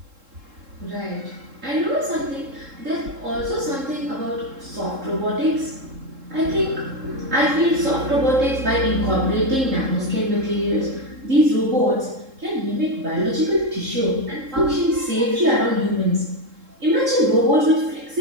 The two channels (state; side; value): late; left; 3.7 ms